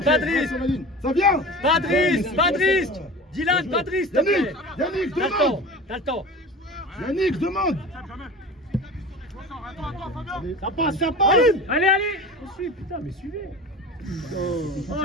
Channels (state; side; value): normal; both; correlation 0.35